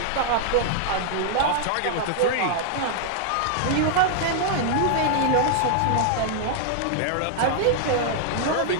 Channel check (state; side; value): different; both; correlation 0.00